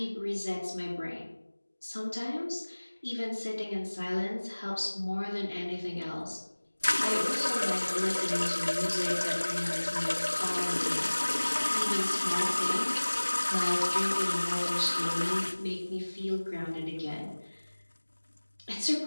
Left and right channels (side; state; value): both; inverted; correlation -1.00